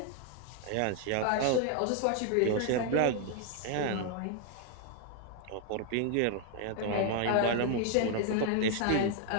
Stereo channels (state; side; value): different; both; correlation 0.00